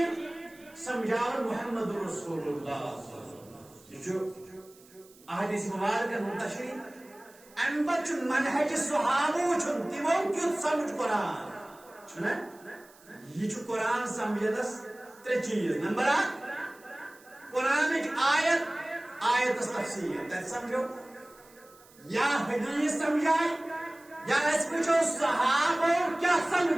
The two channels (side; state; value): right; noise; hiss, 26 dB below the sound